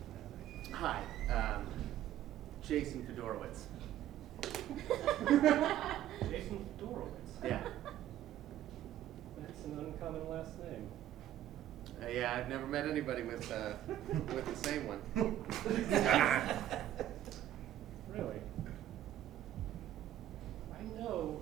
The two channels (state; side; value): quieter; left; 12.1 dB